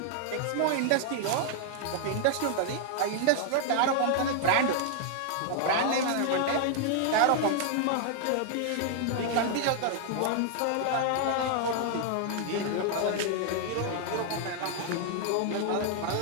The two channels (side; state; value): both; different; correlation 0.00